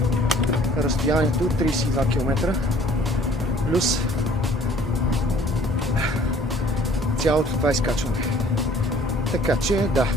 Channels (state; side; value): normal; both; correlation 0.54